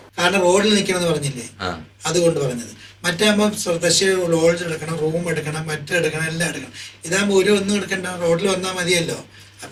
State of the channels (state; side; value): identical; both; correlation 1.00